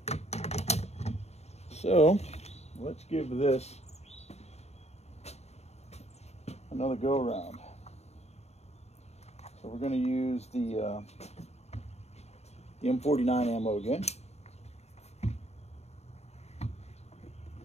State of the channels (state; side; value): late; right; 0.31 ms